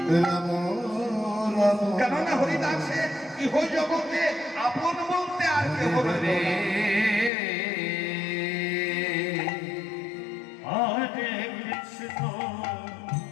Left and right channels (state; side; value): drops out; right; at 7.3 s